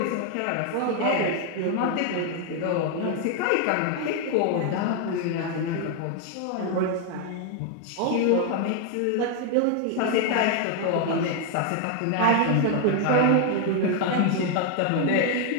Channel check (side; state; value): both; different; correlation 0.01